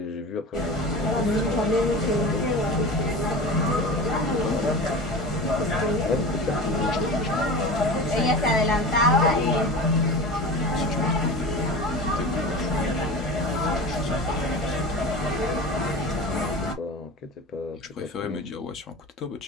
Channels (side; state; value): both; normal; correlation 0.32